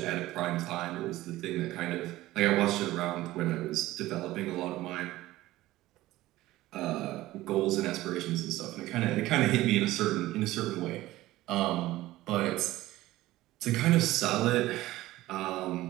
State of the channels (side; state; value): left; quieter; 16.8 dB